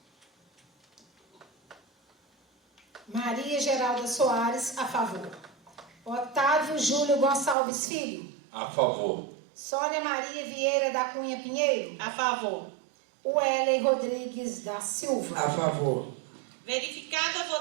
Maria Geralda Soares, a favor. Otávio Júlio Gonçalves Filho. A favor. Sônia Maria Vieira da Cunha Pinheiro. A favor. Wellen Rodrigues da Silva. A favor. Verificada a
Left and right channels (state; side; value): drops out; left; at 7.6 s